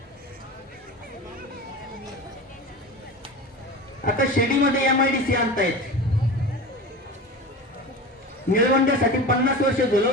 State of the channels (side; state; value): both; normal; correlation 0.31